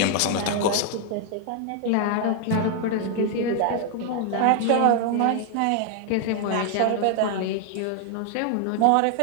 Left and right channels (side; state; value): both; different; correlation 0.00